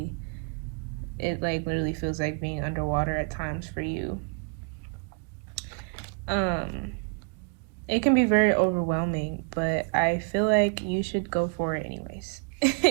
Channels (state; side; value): quieter; left; 38.4 dB